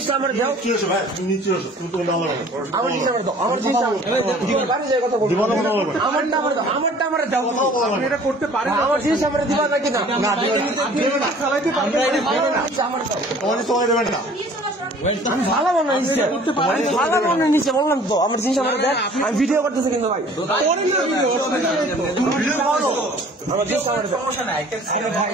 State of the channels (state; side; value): normal; both; correlation 0.50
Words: আমার দাও কি হচ্ছে ভাই তুমি নিচে আসো তুমি তো আল্লাহ আমার জিনিস আমার দাও আমার জিনিস বাড়ি যায় কথা বলবো আমারটা আমার দাও আপনি এটা করতে পারেন আমার জিনিস আমার দিবা নাকি না না দিবেন না চালাইতে পারবেন আমার দাও তোমার চলে দেবেন না আমি ভালো বানাই নিচে ভালো বানাই নিচে বললাম তো আমার জিনিস আমার দেখ আমি ভিডিও করতেছি কিন্তু ভাই আমার জিনিস আমার দাও